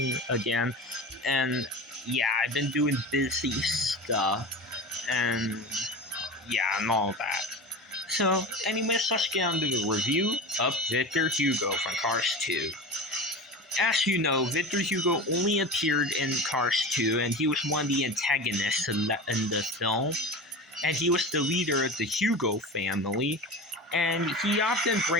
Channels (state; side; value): normal; both; correlation 0.30